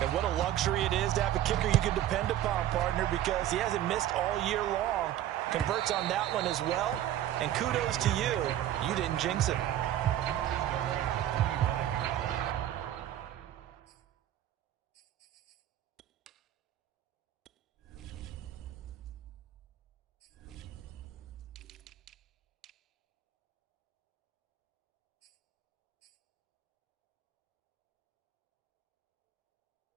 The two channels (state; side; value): quieter; left; 12.3 dB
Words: what a luxury it is to have a kicker you can depend upon, partner, because he hasn't missed all year long. Converts on that one as well. And kudos to you. You didn't jinx it.